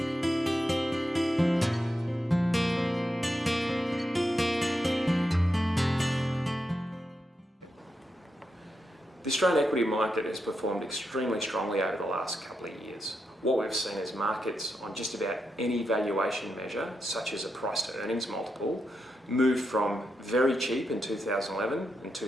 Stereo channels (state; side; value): normal; both; correlation 0.85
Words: The Australian equity market has performed extremely strongly over the last couple of years. What we've seen is markets on just about any valuation measure, such as a price to earnings multiple, moved from very cheap in 2011 and